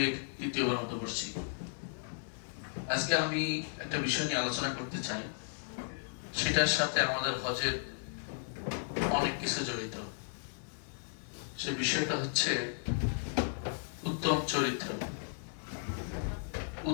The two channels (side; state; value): right; silent; digital silence